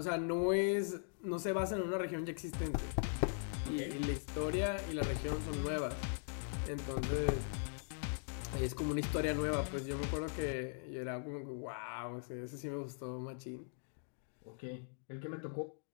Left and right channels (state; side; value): silent; right; digital silence